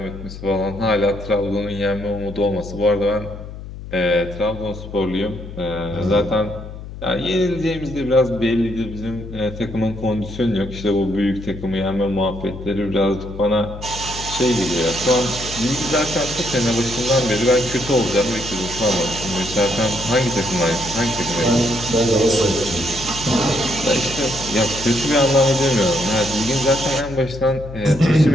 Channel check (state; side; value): noise; left; hum, 12 dB below the sound